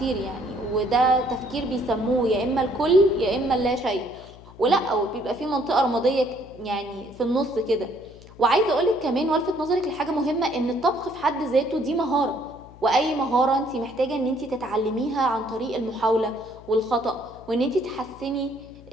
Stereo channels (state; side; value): noise; left; hum, 20 dB below the sound